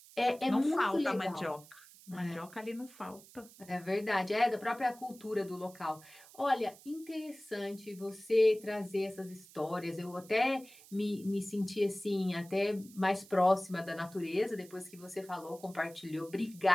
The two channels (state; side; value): noise; right; hiss, 21 dB below the sound